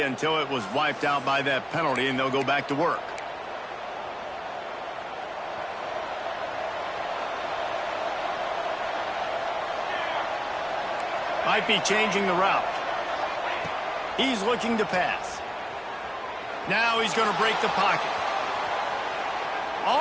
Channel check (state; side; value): identical; both; correlation 1.00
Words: until it was wiped out by that penalty, and they'll go back to work. Might be changing the route. He's looking to pass. Now he's going to break the pocket.